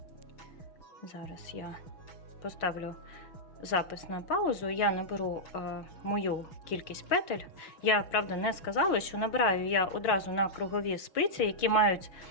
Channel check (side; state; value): right; late; 6.2 ms